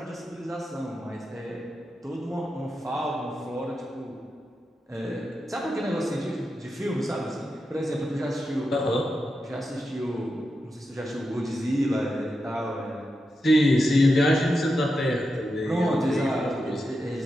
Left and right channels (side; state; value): both; normal; correlation 0.88